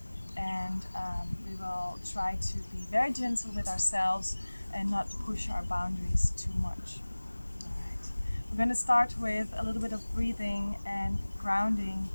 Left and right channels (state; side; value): inverted; both; correlation -1.00